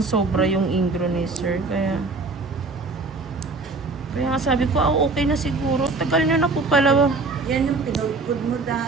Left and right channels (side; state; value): left; quieter; 3.7 dB